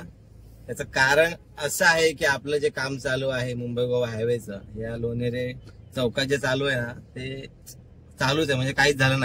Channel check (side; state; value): both; identical; correlation 1.00